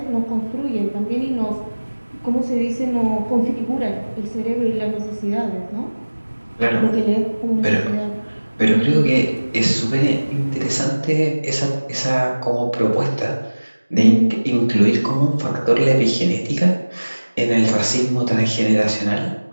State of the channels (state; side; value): inverted; both; correlation -1.00